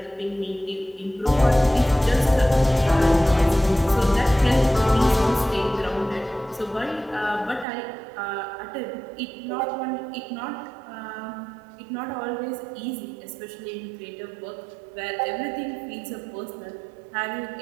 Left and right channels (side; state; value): left; drops out; at 7.7 s